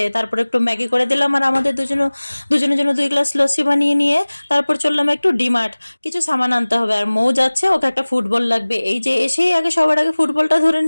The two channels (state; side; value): inverted; both; correlation -1.00